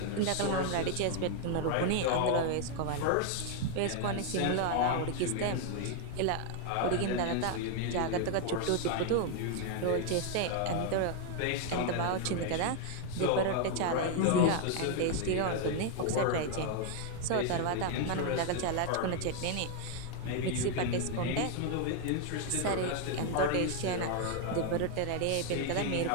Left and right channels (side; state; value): both; different; correlation 0.00